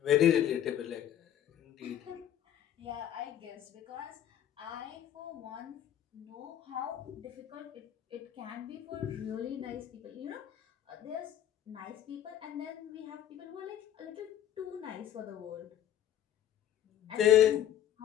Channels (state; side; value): quieter; right; 11.0 dB